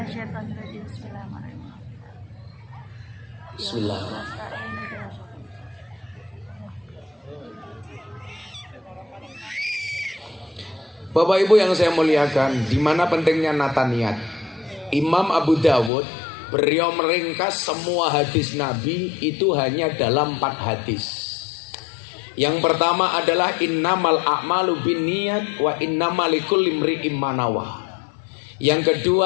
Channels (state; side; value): drops out; right; at 15.9 s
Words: rajim. Bismillahirrahmanirrahim. Bismillahirrahmanirrahim. Bapak Ibu yang saya muliakan, di mana pentingnya nata niat. Imam Abu Dawud beliau meringkas semua hadis Nabi itu hanya dalam 4 hadis. Yang pertama adalah innamal a'malu binniyat wa innamal likulli imri'in ma nawa. Yang